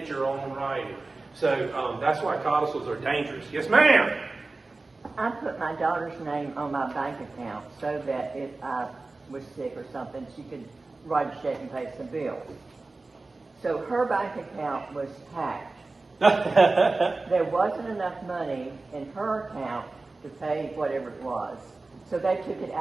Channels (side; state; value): left; quieter; 3.4 dB